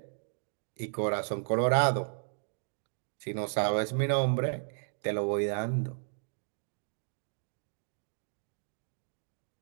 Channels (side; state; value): left; silent; digital silence